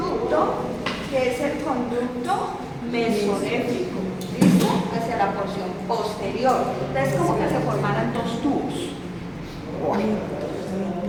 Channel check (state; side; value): identical; both; correlation 1.00